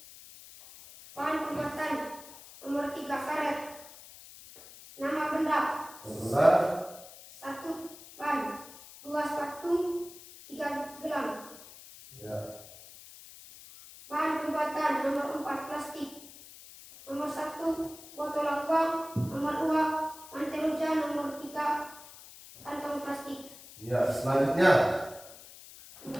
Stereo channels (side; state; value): left; noise; hiss, 17 dB below the sound